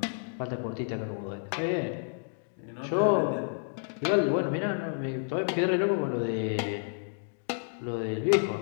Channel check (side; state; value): right; silent; digital silence